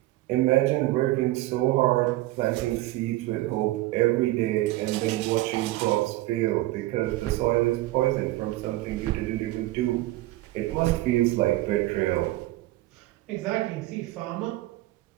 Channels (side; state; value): left; quieter; 17.6 dB